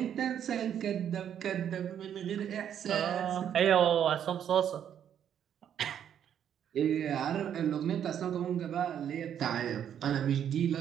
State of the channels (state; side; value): quieter; left; 9.3 dB